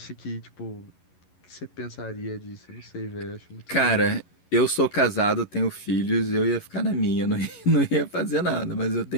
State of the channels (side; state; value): right; late; 11 ms